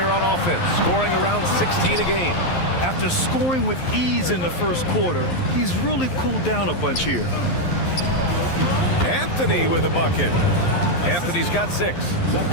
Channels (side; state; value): right; late; 11 ms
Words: on offense, scoring around 16 a game. After scoring with ease in the first quarter, he's really cooled down a bunch here. Anthony with a bucket. Anthony's got 6.